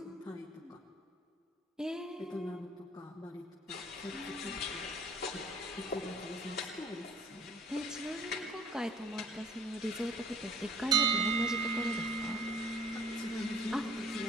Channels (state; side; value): normal; both; correlation 0.52